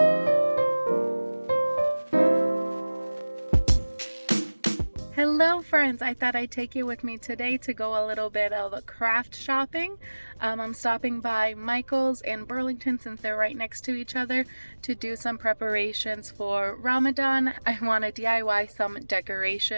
friends, I thought I'd take you with me today to go a little bit of craft shopping. I'm stopping by Michael's and Burlington since they're right next to each other to do some preparations for Ramadan. I want to DIY some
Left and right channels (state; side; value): inverted; both; correlation -1.00